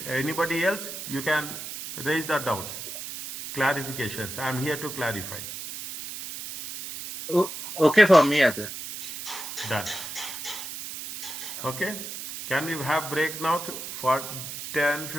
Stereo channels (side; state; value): right; noise; hiss, 8 dB below the sound